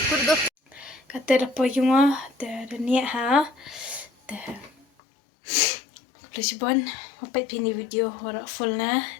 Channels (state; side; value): drops out; right; at 4.9 s